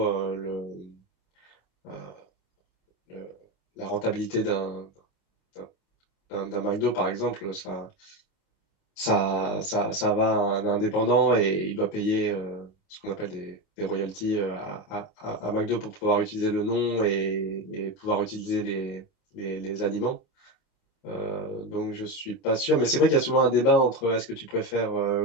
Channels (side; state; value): right; late; 28 ms